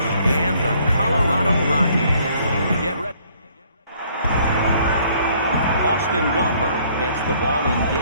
and the Colorado Rockies. Get ready. Austin Gomber gets the ball in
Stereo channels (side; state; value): both; inverted; correlation -0.62